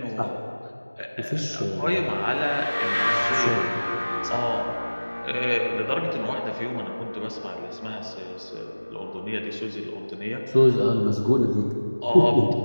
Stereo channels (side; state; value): both; inverted; correlation -1.00